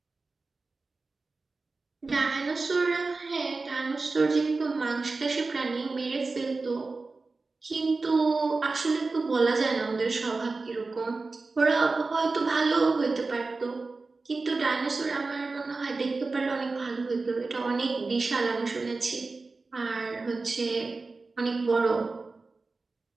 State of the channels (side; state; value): left; quieter; 3.8 dB